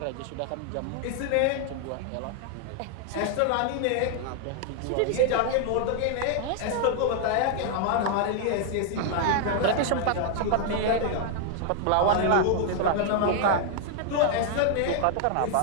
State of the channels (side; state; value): both; different; correlation 0.00